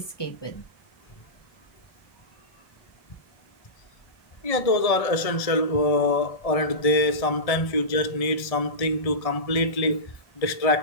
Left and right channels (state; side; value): late; right; 1.6 ms